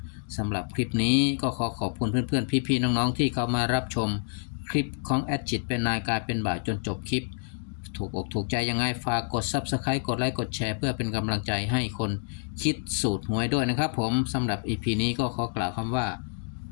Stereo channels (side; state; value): right; silent; digital silence